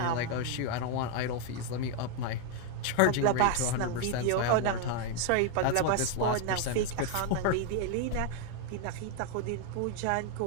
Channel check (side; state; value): both; different; correlation 0.01